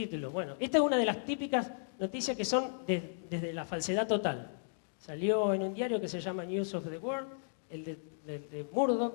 Bueno, esta es una de las típicas noticias que son desde la falsedad total. Salió en un diario que se llama News of the World, el de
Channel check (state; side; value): silent; right; digital silence